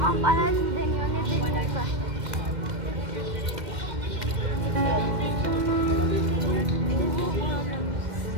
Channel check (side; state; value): left; late; 2.1 ms